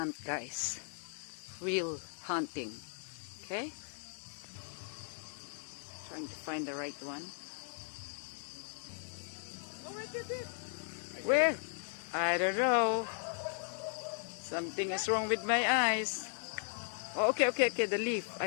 guys. Real hunting. Okay? Trying to find the right one. Oh, right there. Where? I don't know. Something is wrong with my eyes. Oh, okay. The leaf.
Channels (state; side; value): silent; right; digital silence